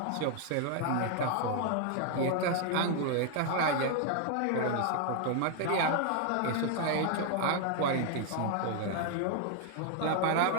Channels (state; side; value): different; both; correlation 0.00